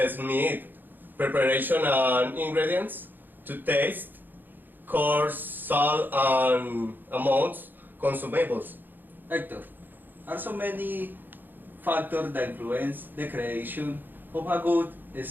meat, preparation and ingredients to taste, coarse, salt and amounts consumables. Hector, are so many factors that influence the creation of a good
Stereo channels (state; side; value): late; left; 0.090 ms